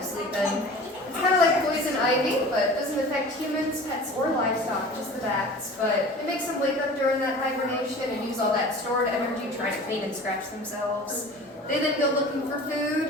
sleeping. It's kind of like poison ivy, but it doesn't affect humans, pets, or livestock, just the bats. But it makes them wake up during that hibernation and use all that stored energy trying to clean and scratch themselves. They then go looking for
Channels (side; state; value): both; normal; correlation 0.40